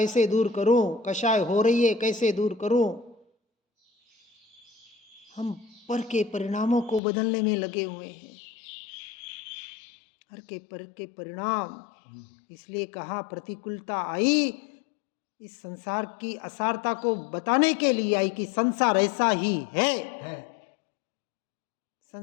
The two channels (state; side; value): drops out; right; at 7.0 s